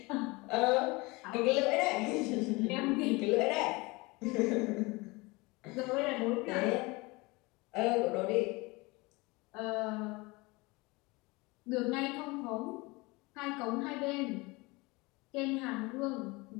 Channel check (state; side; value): quieter; right; 24.4 dB